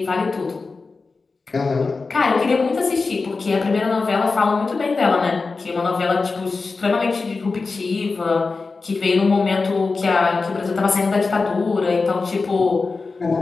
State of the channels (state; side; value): quieter; right; 4.1 dB